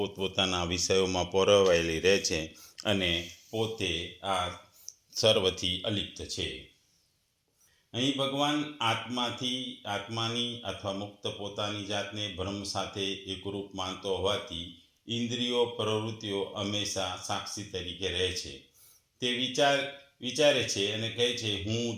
વિષયોમાં પરોવાયેલી રહે છે અને પોતે આ સર્વથી અલિપ્ત છે. અહીં ભગવાન આત્માની અથવા મુક્ત પોતાની જાતને બ્રહ્મ સાથે એકરૂપ માનતો હોવાથી ઇન્દ્રિયો પ્રવૃત્તિઓ હંમેશા સાક્ષી તરીકે રહે છે. તે વિચારે છે અને કહે છે હું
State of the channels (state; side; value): identical; both; correlation 1.00